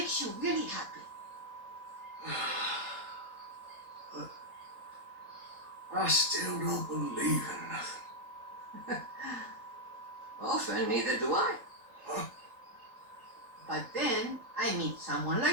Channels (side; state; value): left; late; 3.8 ms